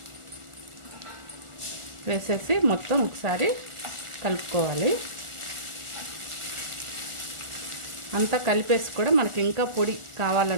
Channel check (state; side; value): late; left; 1.4 ms